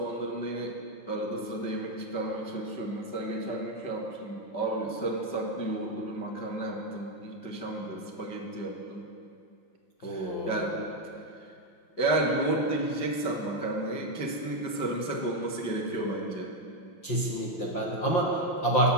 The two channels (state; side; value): late; right; 5.8 ms